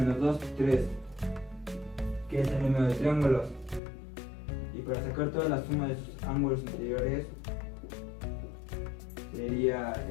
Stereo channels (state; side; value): drops out; right; at 3.8 s